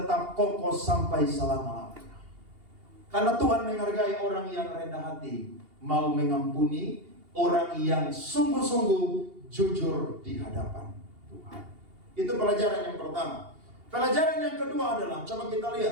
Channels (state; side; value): late; left; 2.8 ms